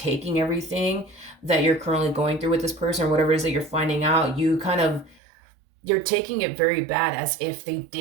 everything that you're currently going through with this person, or whatever it is that you're finding out, you're taking it very bad, as if they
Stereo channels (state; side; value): drops out; left; at 5.2 s